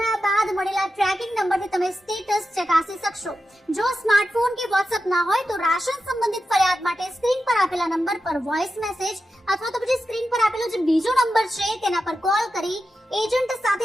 બાદ મળેલા ટ્રેકિંગ નંબરથી તમે સ્ટેટસ ચકાસી શકશો। જો સ્માર્ટફોન કે વોટ્સએપ ના હોય તો રાશન સંબંધિત ફરિયાદ માટે સ્ક્રીન પર આપેલા નંબર પર વોઇસ મેસેજ અથવા તો પછી સ્ક્રીન પર આપેલો જે બીજો નંબર છે તેના પર કોલ કરી એજન્ટ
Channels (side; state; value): both; normal; correlation 0.90